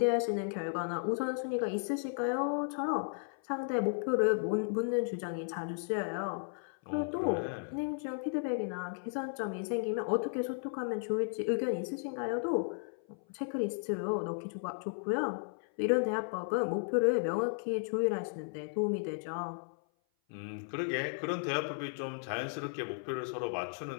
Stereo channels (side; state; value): right; silent; 55 dB below the other